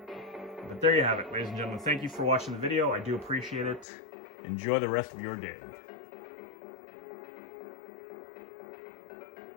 But there you have it, ladies and gentlemen. Thank you for watching the video. I do appreciate it. Enjoy the rest of your day.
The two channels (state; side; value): drops out; right; at 3.9 s